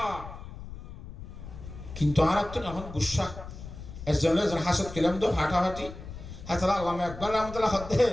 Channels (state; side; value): noise; left; rumble, 12 dB below the sound